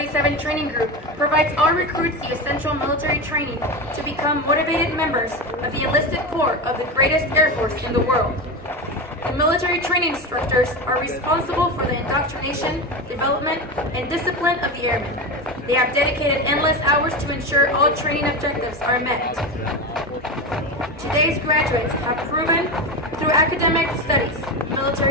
Training Group provides all recruits the essential military training to become motivated members of the enlisted corps of the greatest Air Force in the world. The military training instructors are responsible for the indoctrination, development, and discipline of the airmen. They have dedicated endless hours to ensure all training objectives are met. Today's graduates have proven through academic studies,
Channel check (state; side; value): normal; both; correlation 0.21